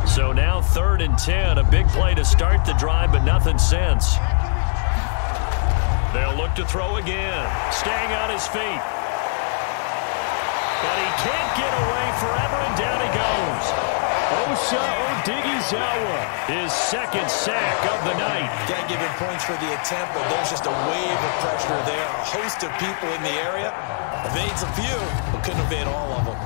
So now 3rd and 10. A big play to start the drive, but nothing since. They'll look to throw again. Staying on his feet. But he can't get away forever, and down he goes. Osa Odighizuwa, his second sack of the night. Got to give him points for the attempt, but there's just a wave of pressure there. A host of people in the area. Evades a few, but couldn't evade all of them.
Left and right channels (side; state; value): right; silent; digital silence